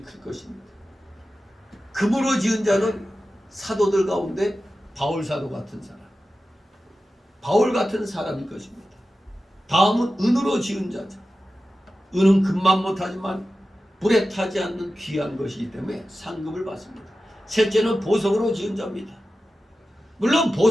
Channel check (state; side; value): normal; both; correlation 0.93